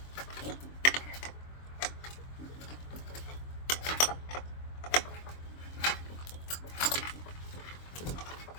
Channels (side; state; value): right; late; 23 ms